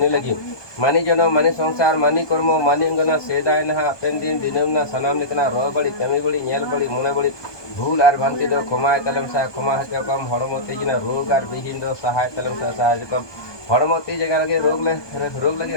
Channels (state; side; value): late; right; 1.2 ms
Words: लगी मानी जनो मानी संसार मानी कर्म मानी अंगना सेदाय ना पेन दिन दिनम ना सनाम निकना रो बड़ी कमी बड़ी नेल बड़ी मुने बड़ी भूल आर भंति दो खमाय तलम सा खमा हते कम हड़मो तेजिना रोग आर बिहीन दो सहाय तलम सा सहाय कम हड़मो ती जगह लगे रोग लगे